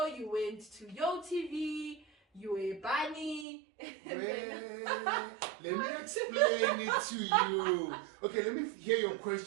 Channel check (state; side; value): drops out; left; at 3.5 s